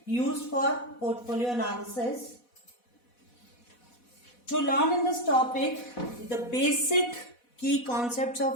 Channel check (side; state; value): right; late; 4.1 ms